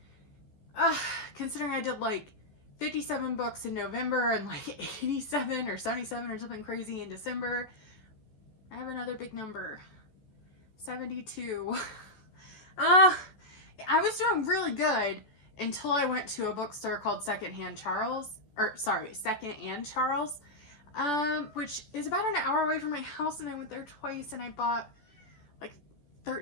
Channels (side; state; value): right; late; 14 ms